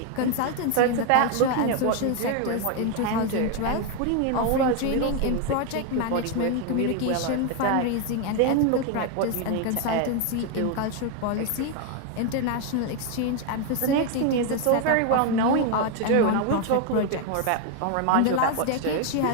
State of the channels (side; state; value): both; different; correlation 0.01